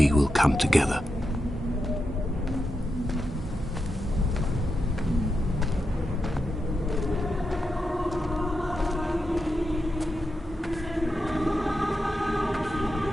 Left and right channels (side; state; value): both; normal; correlation 0.87